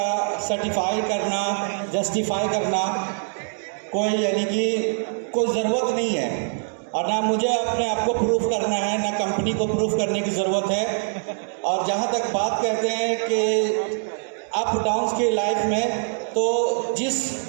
सर्टिफाई करना, जस्टिफाई करना कोई यानी कि कोई ज़रूरत नहीं है, और ना मुझे अपने आप को प्रूफ करना है, ना कंपनी को प्रूफ करने की ज़रूरत है। और जहाँ तक बात करते हैं कि अप डाउन्स की लाइफ में, तो जिस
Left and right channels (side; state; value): left; silent; digital silence